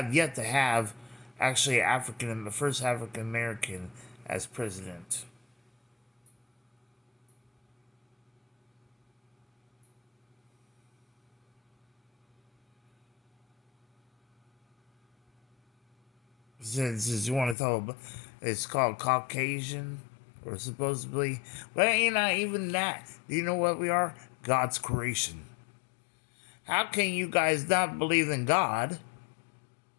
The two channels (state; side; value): drops out; right; at 17.6 s